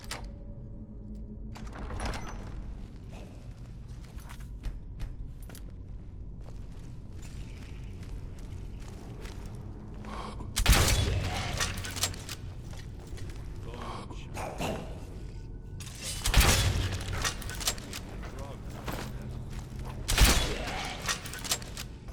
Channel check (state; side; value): identical; both; correlation 1.00